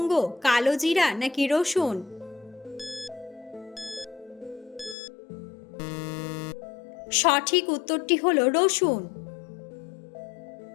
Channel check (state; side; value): drops out; right; at 5.0 s